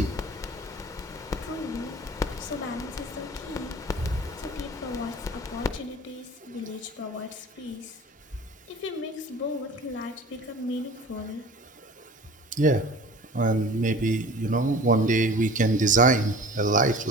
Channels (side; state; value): both; normal; correlation 0.41